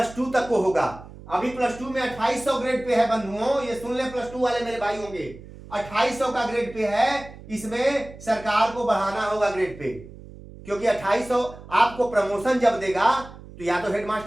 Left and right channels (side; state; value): right; noise; hum, 17 dB below the sound